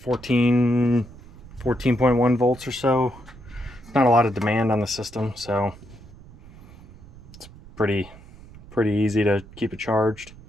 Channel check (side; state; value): right; noise; rumble, 20 dB below the sound